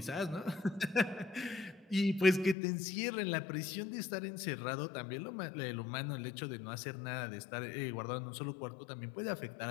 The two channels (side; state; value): right; drops out; at 2.6 s